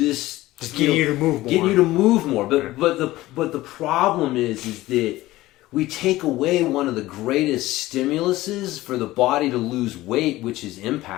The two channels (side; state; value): right; quieter; 17.2 dB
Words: just getting you to move more. Getting you to move more. But the problem is that we take away one of the greatest stimuluses for the body to lose weight, which is